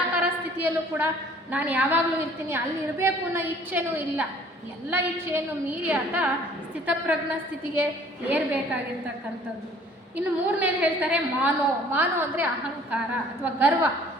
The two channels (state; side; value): normal; both; correlation 0.54